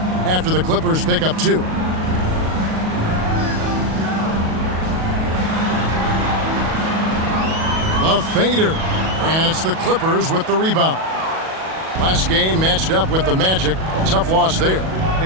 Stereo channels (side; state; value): left; late; 37 ms